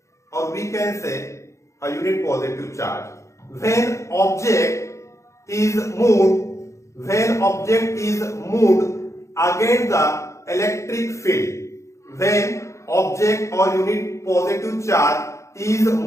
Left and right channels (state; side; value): late; right; 0.14 ms